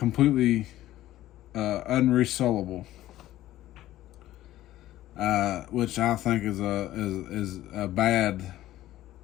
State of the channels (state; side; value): quieter; right; 14.6 dB